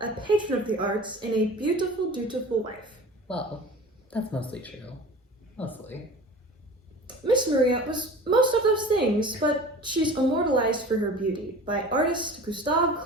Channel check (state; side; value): normal; both; correlation 0.39